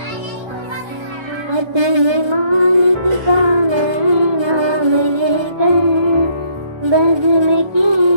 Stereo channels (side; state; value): left; late; 1.3 ms